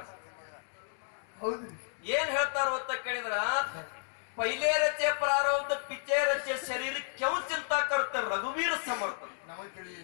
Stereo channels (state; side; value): silent; right; digital silence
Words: ಏನ್ ಹೇಳ್ತಾರ ಅಂತ ಕೇಳಿದ್ರ पहिले रचे प्रारब्ध पिचे रचे शरीर क्यों चिंता करते रघुवीर समर्थ